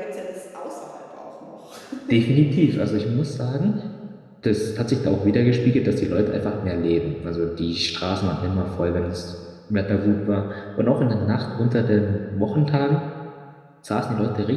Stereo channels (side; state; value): both; identical; correlation 1.00